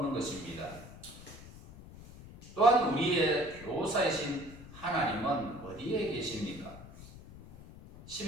것입니다. 또한 우리의 교사이신 하나님은 어디에 계십니까?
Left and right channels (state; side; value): noise; left; rumble, 17 dB below the sound